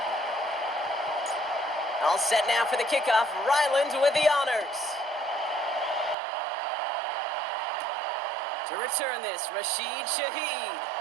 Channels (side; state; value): left; drops out; at 6.2 s